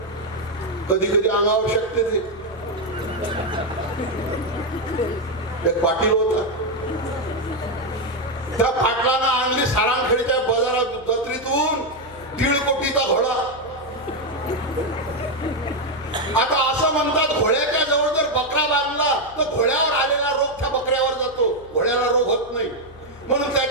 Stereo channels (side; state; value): left; noise; hum, 21 dB below the sound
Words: कधी कधी अंगावर शकते ते. एक पाटील होता, त्या पाटलानं आणली सारांखेडच्या बाजारात जत्रेतून 1.5 कोटीचा घोडा. आता असं म्हणतात घोड्याच्या जवळ जर बकरा बांधला तर घोड्यावर आलेला रोग त्या बकऱ्यावर जातो, घोड्याला रोग होत नाही. म्हणून